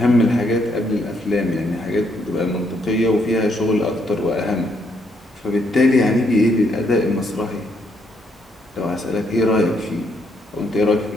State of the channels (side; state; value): both; normal; correlation 0.74